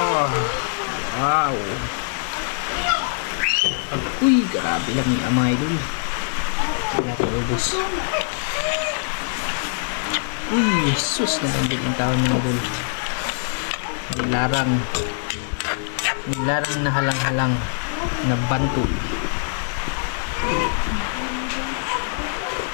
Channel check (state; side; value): silent; right; 63 dB below the other